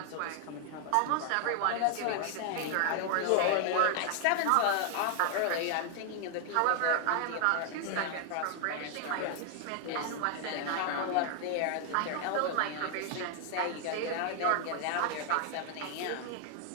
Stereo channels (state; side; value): different; both; correlation 0.00